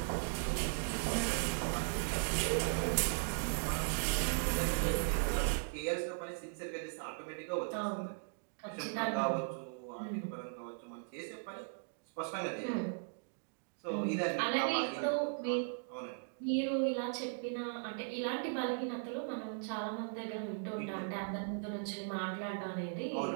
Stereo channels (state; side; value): silent; left; digital silence